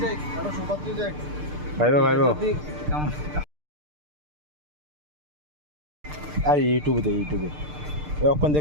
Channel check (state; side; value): late; left; 6.7 ms